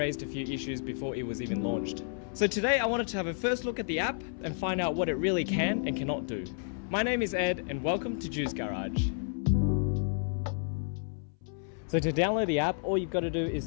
a few issues before it was even launched. So today I wanted to have a first look at the app and find out what it really can and cannot do. My name is Ed and welcome to Juic'd Garage. So to download the app, all you've got to do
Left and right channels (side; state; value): right; silent; 57 dB below the other